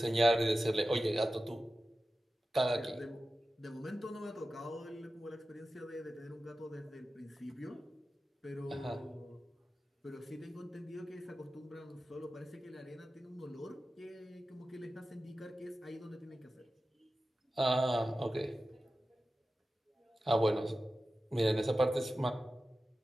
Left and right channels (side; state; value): both; normal; correlation 0.94